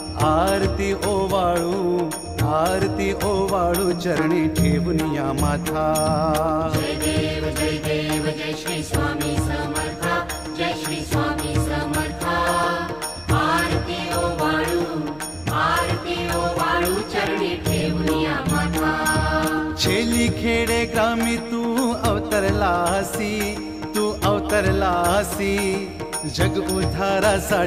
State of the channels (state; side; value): noise; left; hum, 23 dB below the sound